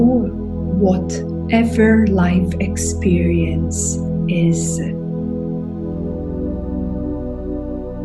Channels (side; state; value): both; identical; correlation 1.00